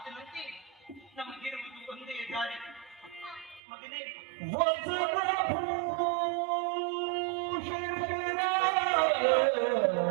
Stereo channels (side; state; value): left; drops out; at 3.6 s